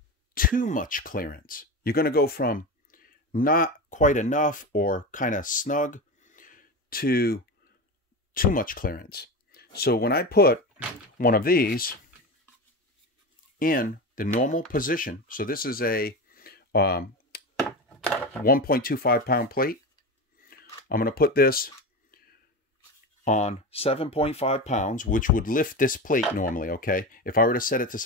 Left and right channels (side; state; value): both; normal; correlation 0.23